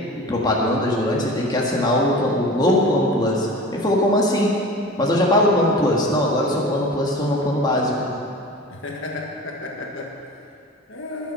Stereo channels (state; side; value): normal; both; correlation 0.36